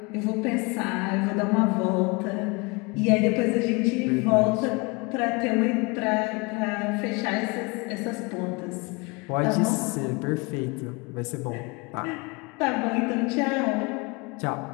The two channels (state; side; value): quieter; right; 27.7 dB